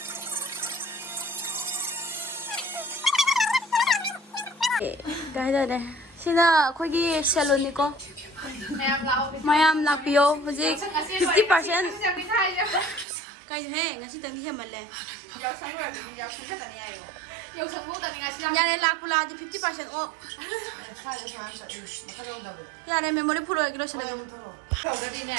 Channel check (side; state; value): left; drops out; at 13.1 s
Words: cái đây này xin là khôi ghi salon đi con mayam lakpio hojik 50% cái thế ngay xin tầng đi mà lẹ nhà này lakpula thì 50% off nhà này memory full rồi cái đó sẽ là Cậu đã đi